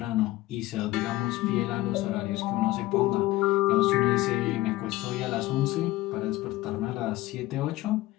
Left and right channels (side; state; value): right; quieter; 17.5 dB